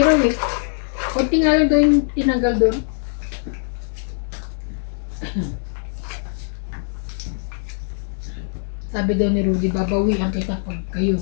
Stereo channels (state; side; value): silent; right; digital silence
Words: eh. Kunti nga lang daw yung tinanggal doon. Sabi daw ni Rudy, babawian kita pag